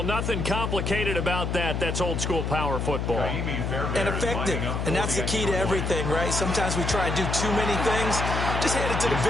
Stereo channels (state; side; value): noise; left; hum, 1 dB below the sound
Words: nothing complicated about that. That's old-school power football. And effective. And that's the key to everything, right? Sometimes we try and do too many things. Just hand it to the